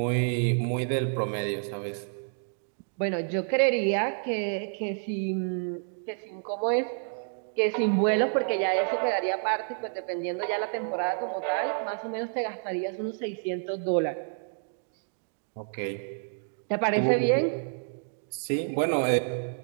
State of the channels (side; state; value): left; silent; digital silence